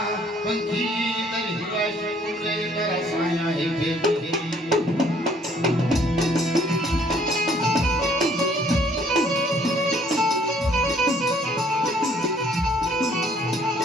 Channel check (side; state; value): both; normal; correlation 0.62